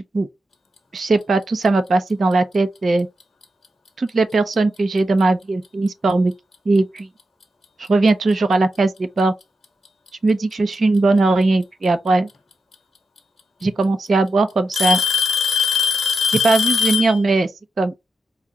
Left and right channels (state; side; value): normal; both; correlation 0.88